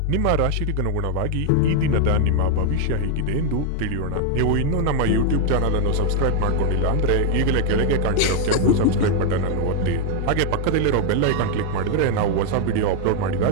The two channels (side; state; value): both; different; correlation 0.00